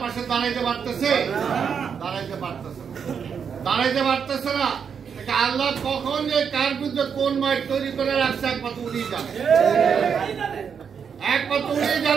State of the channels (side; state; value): left; quieter; 6.9 dB